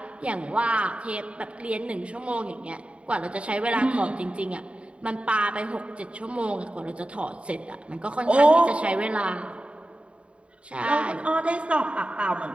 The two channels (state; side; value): late; left; 0.060 ms